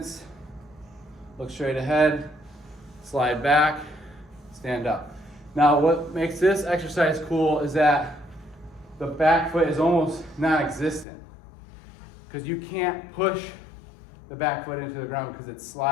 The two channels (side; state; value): right; drops out; at 11.1 s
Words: look straight ahead, slide back, stand up. Now what makes this exercise cool is that the back foot is almost non-existent because you can't push the back foot into the ground because it's